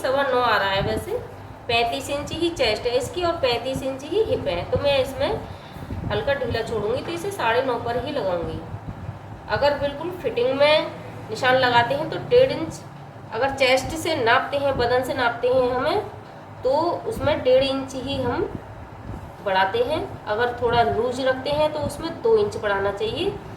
आ रहा है वैसे। 35 इंच ही चेस्ट है इसकी और 35 इंच ही हिप है, तो मैं इसमें हल्का ढीला छोड़ूंगी, तो इसे 9.5 पर ही लगाऊंगी। अगर बिल्कुल फिटिंग में निशान लगाते हैं तो 1.5 इंच, अगर चेस्ट से नापते हैं, बदन से नापते हैं हमें, तो उसमें 1.5 इंच ही हम बढ़ाते हैं। अगर थोड़ा लूज रखते हैं तो उसमें 2 इंच बढ़ाना चाहिए।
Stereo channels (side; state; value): both; identical; correlation 1.00